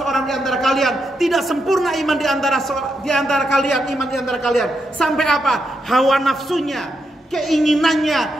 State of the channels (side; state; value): both; normal; correlation 0.83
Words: di antara kalian, tidak sempurna iman di antara kalian, iman di antara kalian. Sampai apa? Hawa nafsunya,